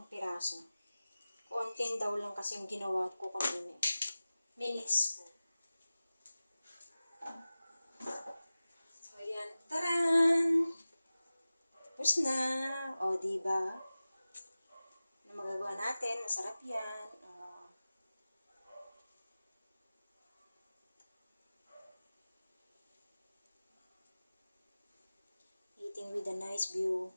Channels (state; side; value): inverted; both; correlation -0.96